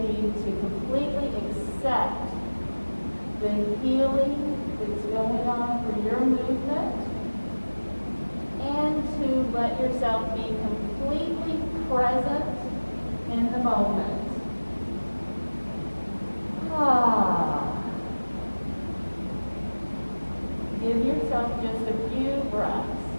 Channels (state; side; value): inverted; both; correlation -1.00